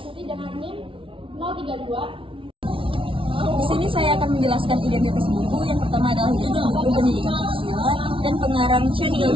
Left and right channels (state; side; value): late; left; 0.25 ms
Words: dengan NIM 032. Di sini saya akan menjelaskan identitas buku. Yang pertama adalah judul buku Pendidikan Pancasila dan pengarang Syari